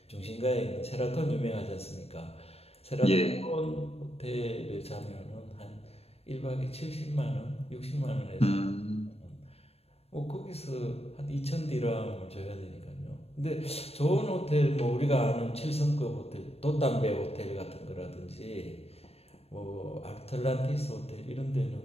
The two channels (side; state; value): right; late; 0.29 ms